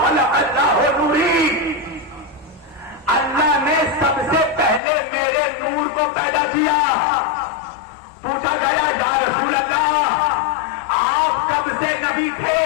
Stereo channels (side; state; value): right; drops out; at 4.8 s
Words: اللہ نوری، اللہ نے سب سے پہلے میرے نور کو پیدا کیا۔ پوچھا گیا یا رسول اللہ آپ کب سے نبی تھے،